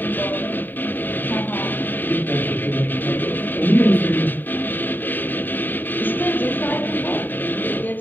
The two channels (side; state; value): right; late; 0.091 ms